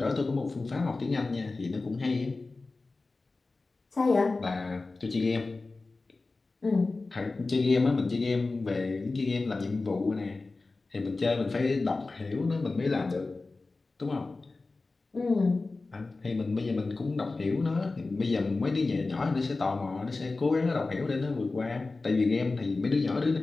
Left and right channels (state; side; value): quieter; right; 3.6 dB